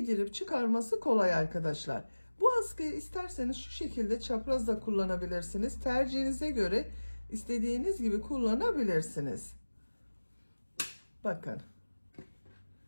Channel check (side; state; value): both; inverted; correlation -1.00